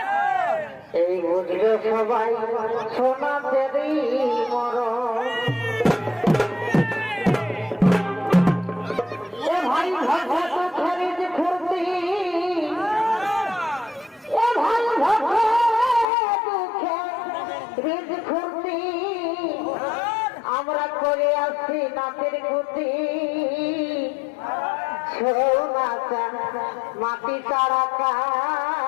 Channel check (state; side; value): drops out; right; at 16.1 s